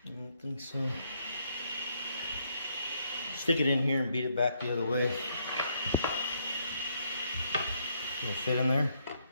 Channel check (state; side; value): inverted; both; correlation -0.73